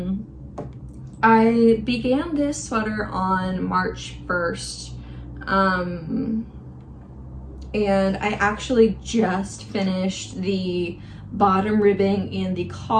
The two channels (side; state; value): both; identical; correlation 1.00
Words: I began this sweater on March 1st, and I actually just finished the bottom ribbing and the